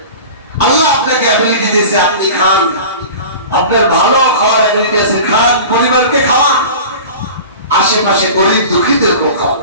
আল্লাহ আপনাকে অ্যাবিলিটি দিয়েছে, আপনি খান, আপনার ভালো খাওয়ার অ্যাবিলিটি আছে, খান, পরিবারকে খাওয়ান, আশেপাশে গরিব দুঃখীদেরকে খাওয়ান।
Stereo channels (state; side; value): inverted; both; correlation -0.36